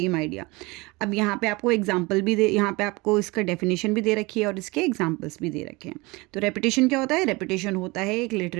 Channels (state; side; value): quieter; left; 24.2 dB